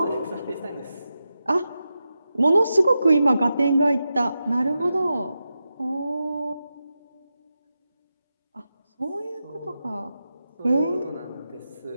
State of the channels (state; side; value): inverted; both; correlation -0.90